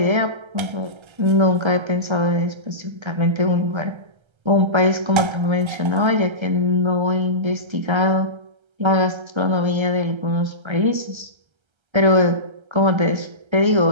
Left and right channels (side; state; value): left; late; 1.3 ms